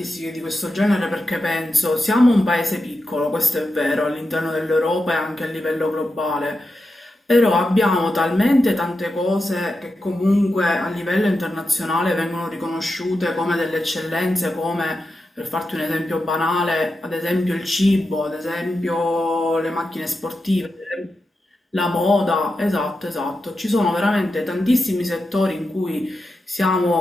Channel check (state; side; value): normal; both; correlation 0.89